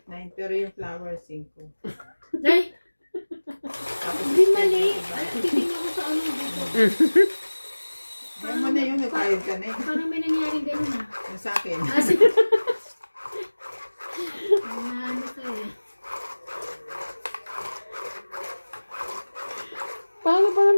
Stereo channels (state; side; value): inverted; both; correlation -1.00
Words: 8, 9. Pero yung flower 5. Ay, Tapos hindi mali. 6, Ay, titignan ko sa ano dito. Kaya mo na yun, nagbayad ka na eh. Parang may nangyaring ganun ha. Yung sa akin. Kasi, ano ka eh. Paano pa